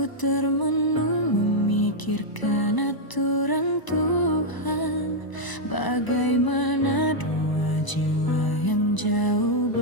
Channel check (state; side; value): late; right; 1.0 ms